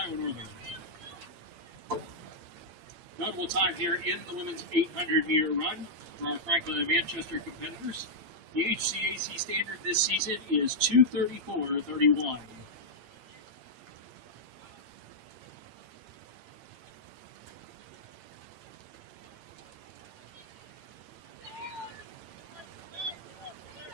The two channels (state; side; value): late; left; 8.7 ms